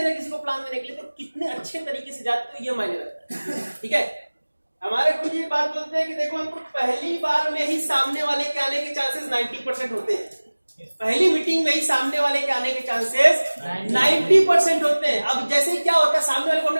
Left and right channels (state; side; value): inverted; both; correlation -1.00